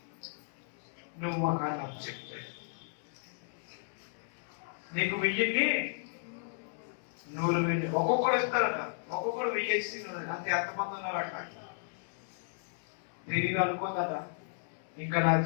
నువ్వు మాకు అని చెప్తే నీకు 1000ని 100,000 ఒక్కొక్కడు ఇస్తారట. ఒక్కొక్కడు 1000 ఇస్తే అంతే. ఎంతమంది ఉన్నారట? తిరిగి అనుకోదట ఇంకా నా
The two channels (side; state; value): right; silent; 55 dB below the other